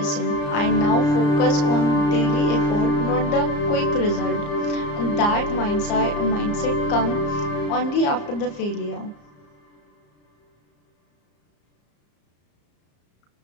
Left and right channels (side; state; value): right; late; 34 ms